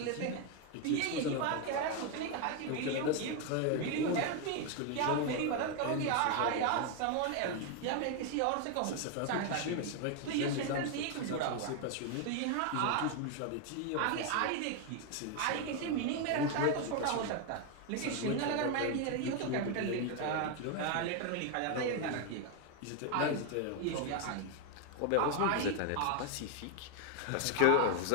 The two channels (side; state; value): both; different; correlation 0.01